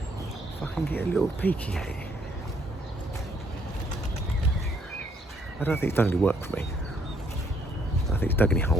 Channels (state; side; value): normal; both; correlation 0.68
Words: if I can get a little peeky at it. I don't think it's done any work for me. I don't think it's dug any